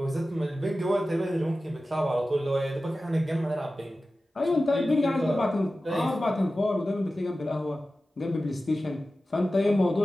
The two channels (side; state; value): both; normal; correlation 0.95